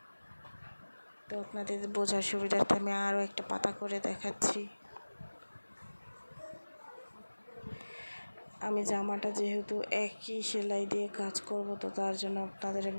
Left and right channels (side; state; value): both; inverted; correlation -1.00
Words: তো আপনাদের বোঝার সুবিধার্থে আমি আরও একটা পাতা করে দেখাচ্ছি। আমি জামাটা যেহেতু একই সেলাই দিয়ে কাজ করব, তো তার জন্য আপনাদের